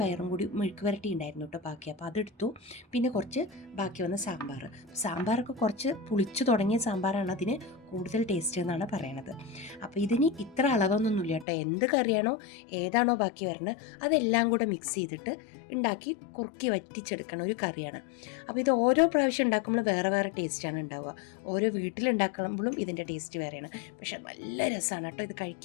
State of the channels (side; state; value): right; drops out; at 11.5 s